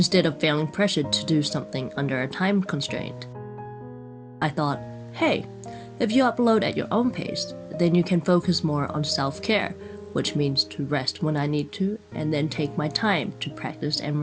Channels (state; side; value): identical; both; correlation 1.00